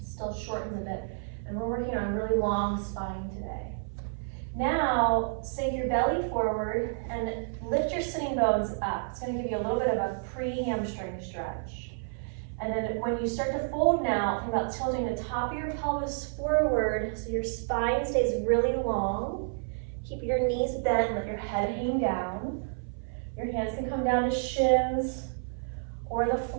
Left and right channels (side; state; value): left; silent; 58 dB below the other